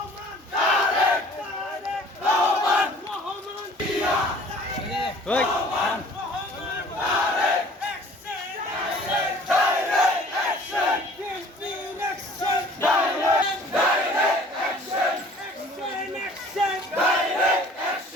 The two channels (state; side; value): normal; both; correlation 0.51